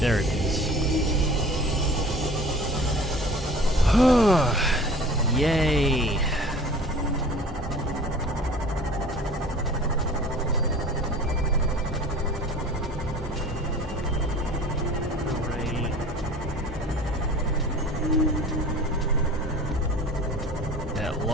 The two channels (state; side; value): normal; both; correlation 0.43